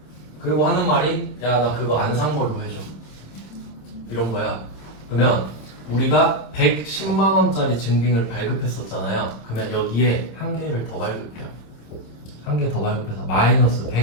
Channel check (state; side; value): late; right; 26 ms